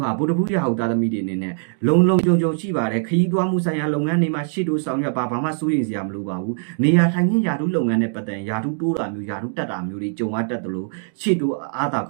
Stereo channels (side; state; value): left; silent; digital silence